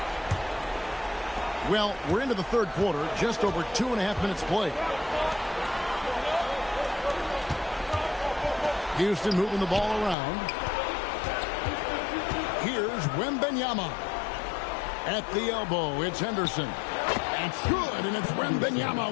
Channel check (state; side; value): drops out; right; at 10.2 s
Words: Well, we're into the third quarter, just over 2.5 minutes played. Houston moving the ball around. Here's Wembanyama. At the elbow, it's Henderson. It's good, and it's Wembanyama